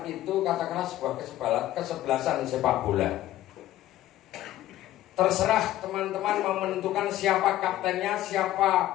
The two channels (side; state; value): right; quieter; 14.1 dB